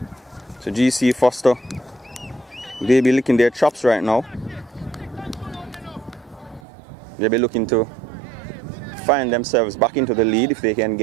So GC Foster, they be licking their chops right now. They'll be looking to find themselves back into the lead if they can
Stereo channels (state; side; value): drops out; left; at 6.6 s